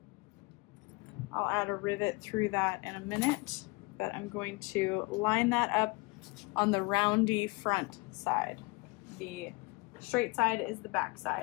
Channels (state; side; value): quieter; right; 25.9 dB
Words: I'll add a rivet through that in a minute, but I'm going to line that up on the roundy front side. The straight side is the back